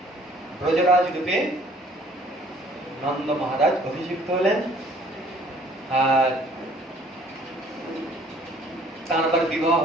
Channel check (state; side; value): normal; both; correlation 0.57